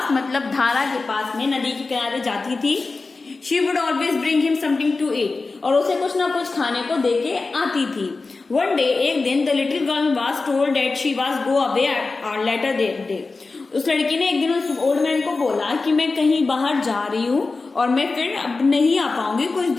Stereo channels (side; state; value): right; quieter; 3.8 dB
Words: मतलब धारा के पास में नदी के किनारे जाती थी. She would always bring him something to eat. और उसे कुछ ना कुछ खाने को देके आती थी. One day, एक दिन the little girl was told that she was go away later that day. उस लड़की ने एक दिन उस ओल्ड मैन को बोला कि मैं कहीं बाहर जा रही हूँ और मैं फिर अब नहीं आ पाऊंगी कुछ